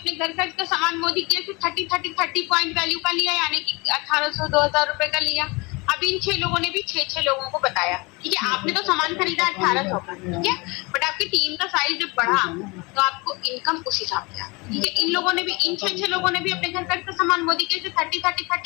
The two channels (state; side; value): quieter; right; 26.6 dB